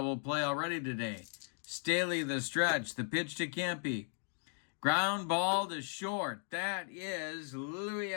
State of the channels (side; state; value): right; silent; 53 dB below the other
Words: play already today. Staley the stretch. The pitch to Campy. Ground ball to short. That is Louis